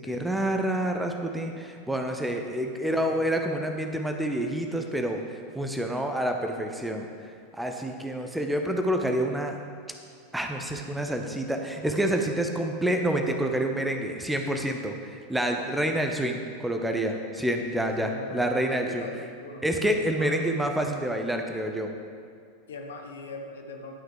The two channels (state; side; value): normal; both; correlation 0.58